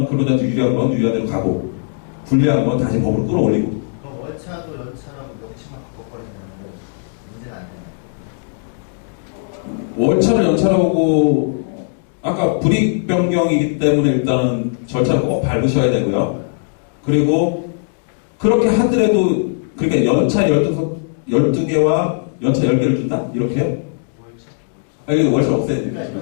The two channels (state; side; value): silent; right; digital silence